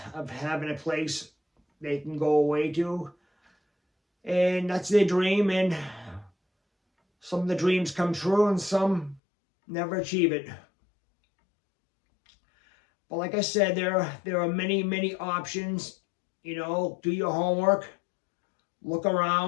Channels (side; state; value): right; drops out; at 9.2 s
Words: of having a place they can go away to. And that's their dream, and some of the dreams come true and some never achieve it. But like I said, there are many, many options. You know, do your homework, look